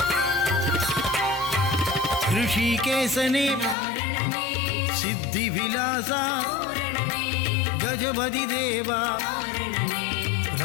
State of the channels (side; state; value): right; drops out; at 3.8 s